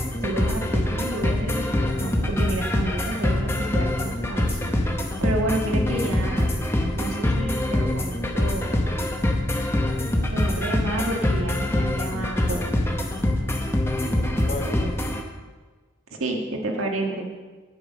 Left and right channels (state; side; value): normal; both; correlation 0.80